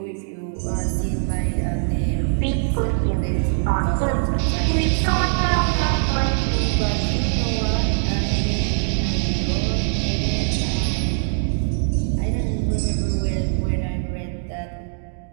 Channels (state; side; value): silent; left; digital silence